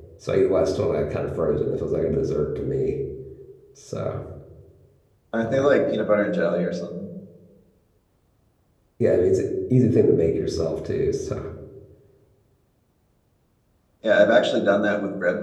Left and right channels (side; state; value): both; identical; correlation 1.00